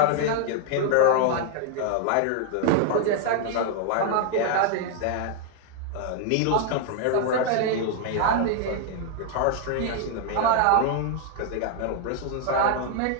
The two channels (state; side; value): different; both; correlation 0.00